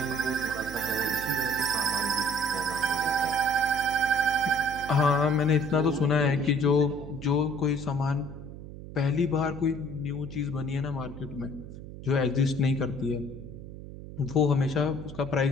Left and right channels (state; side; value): noise; right; hum, 12 dB below the sound